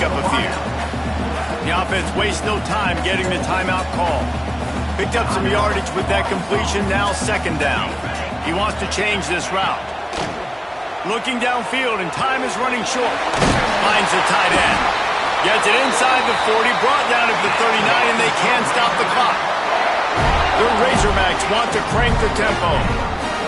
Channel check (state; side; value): identical; both; correlation 1.00